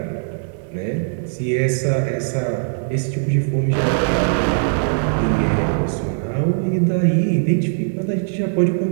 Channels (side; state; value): left; silent; digital silence